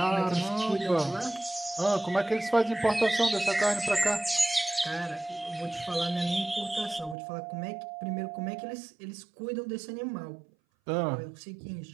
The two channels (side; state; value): left; drops out; at 7.2 s